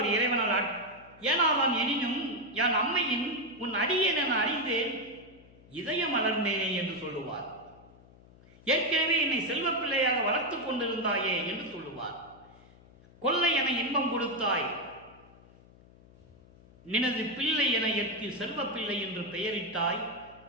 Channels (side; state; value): left; noise; hum, 24 dB below the sound